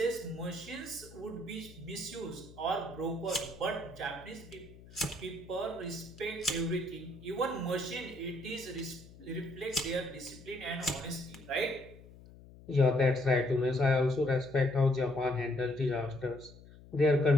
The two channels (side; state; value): left; noise; hum, 20 dB below the sound